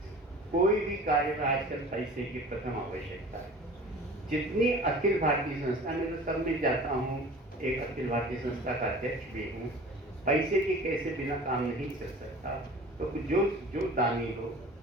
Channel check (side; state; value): both; normal; correlation 0.42